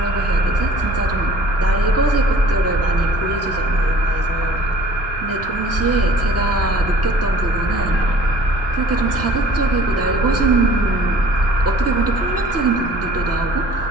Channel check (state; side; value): normal; both; correlation 0.50